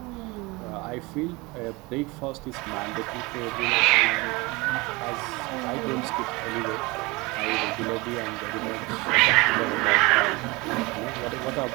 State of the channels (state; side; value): quieter; left; 24.3 dB